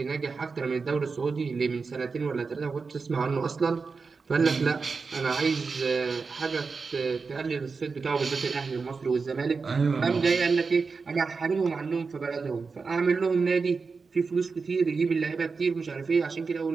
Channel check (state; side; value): quieter; left; 4.7 dB